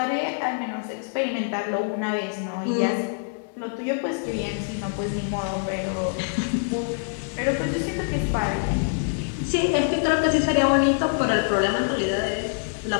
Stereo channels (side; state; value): right; silent; digital silence